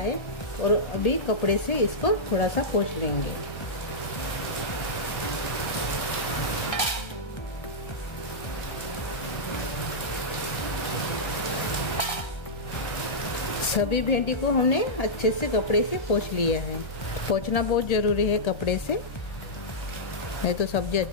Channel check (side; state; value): right; late; 1.3 ms